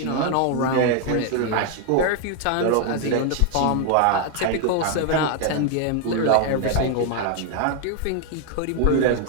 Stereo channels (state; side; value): different; both; correlation 0.00